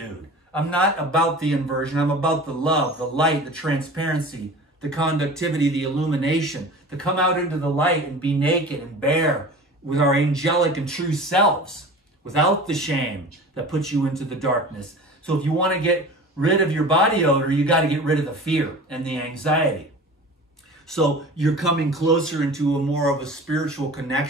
I'm not about the inversion. I'm about the love, the light, the transparency, the conductivity, the illumination, to come out into the light and be naked and bare with our angelic and true selves, without the shame that puts you into the darkness. So if you want to get rid of your body odor, you got to get rid of the fear and the anxiety. So you're coming closer into a more of a spiritual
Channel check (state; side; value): normal; both; correlation 0.38